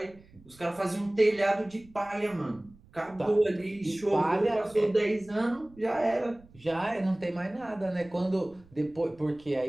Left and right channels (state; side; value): noise; right; rumble, 26 dB below the sound